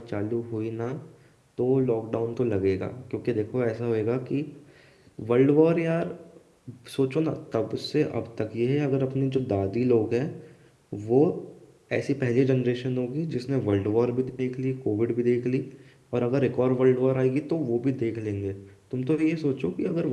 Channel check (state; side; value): identical; both; correlation 1.00